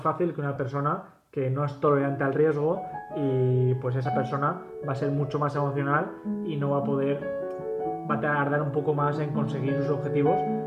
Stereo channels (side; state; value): both; identical; correlation 1.00